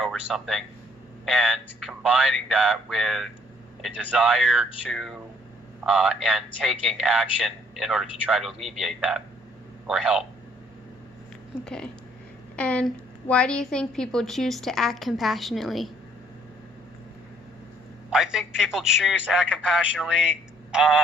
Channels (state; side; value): normal; both; correlation 0.64